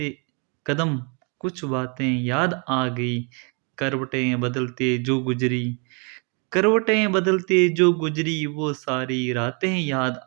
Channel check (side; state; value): left; quieter; 35.3 dB